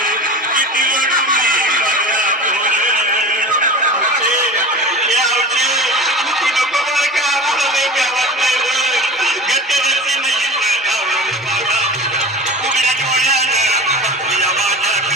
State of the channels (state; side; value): normal; both; correlation 0.33